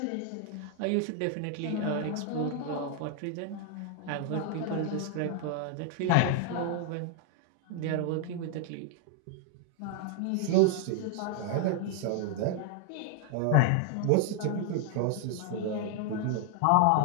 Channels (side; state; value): both; different; correlation 0.00